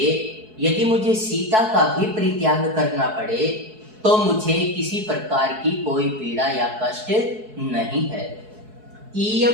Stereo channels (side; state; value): left; late; 4.7 ms